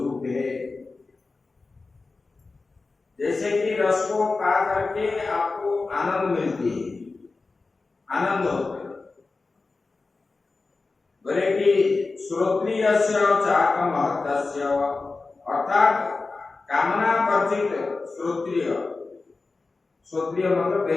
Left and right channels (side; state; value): right; quieter; 3.8 dB